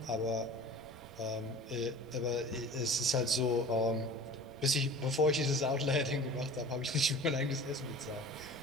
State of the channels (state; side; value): noise; right; rumble, 22 dB below the sound